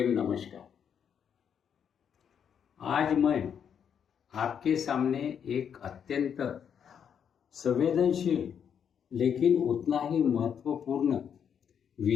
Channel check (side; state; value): right; quieter; 7.9 dB